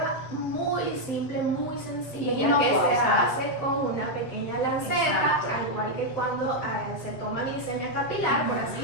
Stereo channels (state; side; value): late; right; 7.7 ms